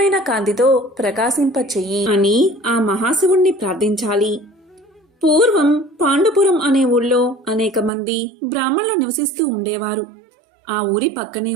కాంతితో ప్రకాశింపచెయ్యి అని ఆ మహాశివుణ్ణి ప్రార్థించాలి. పూర్వం పాండుపురం అనే ఊళ్ళో అనేక మంది బ్రాహ్మణులు నివసిస్తూ ఉండేవారు. ఆ ఊరి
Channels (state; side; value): drops out; left; at 7.9 s